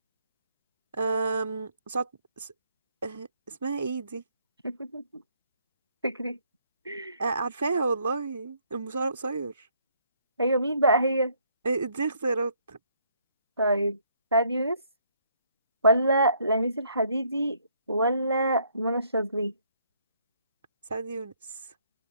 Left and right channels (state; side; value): inverted; both; correlation -0.68